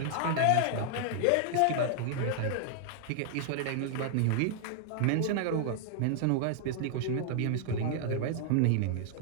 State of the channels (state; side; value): different; both; correlation 0.00